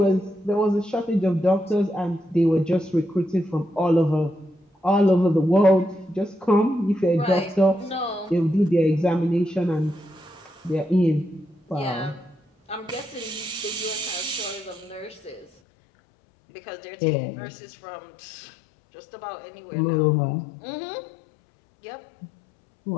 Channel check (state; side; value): drops out; right; at 15.5 s